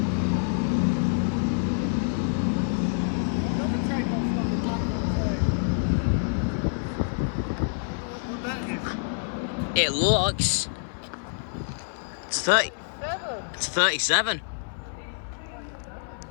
It looks. It's 30. It's 37.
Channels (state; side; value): silent; right; 56 dB below the other